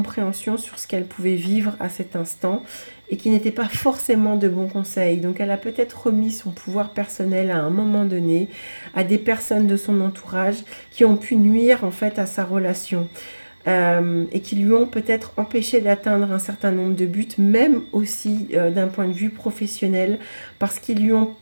sur ce qu'elles pouvaient vivre à cet instant et qui n'étaient pas forcément de bons conseils. Donc, elle a peut-être remis son pouvoir personnel à un moment donné à des personnes de son entourage qui ont pu nuire en fait à sa relation. Et qui lui ont peut-être empêché d'atteindre un certain nombre de buts, même aussi d'un point de vue professionnel, parce qu'ils lui ont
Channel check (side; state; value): both; inverted; correlation -1.00